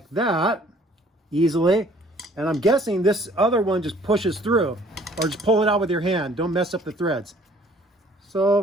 that easily. And I'm guessing this other one just pushes through, or just pull it out with your hand. Don't mess up the threads.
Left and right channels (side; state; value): both; normal; correlation 0.57